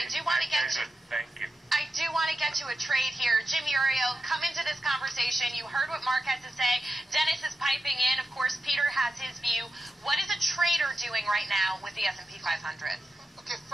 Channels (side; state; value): both; normal; correlation 0.90